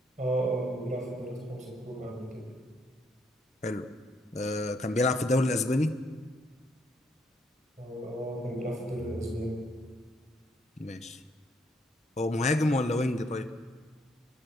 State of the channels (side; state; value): both; normal; correlation 0.72